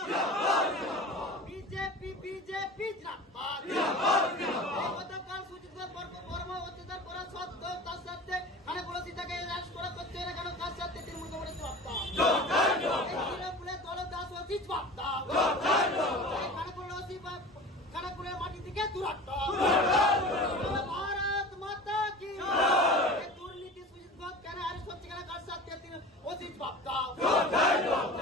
বিজেপি বিজেপি গতকাল সুজিত বর্মা অত্যাচার করা সত্ত্বেও তার সাথে খানাকুল তাকে অ্যারেস্ট করা করছে না কেন, কার সাথে তৃণমূল কংগ্রেস জবাব দাও। তৃণমূলের দলদাস অফিস জবাব দাও। খানাকুলের মাটি থেকে দূরত্ব। ভারত মাতা কি। দুর্নীতি সুজিত ঘোষ কেন অ্যারেস্ট হচ্ছে কেন, কার সাথে অফিস জবাব দাও।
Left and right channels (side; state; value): both; normal; correlation 0.36